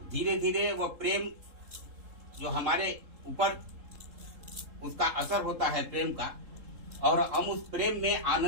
धीरे धीरे वह प्रेम जो हमारे ऊपर उसका असर होता है प्रेम का, और हम उस प्रेम में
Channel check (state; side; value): late; left; 3.7 ms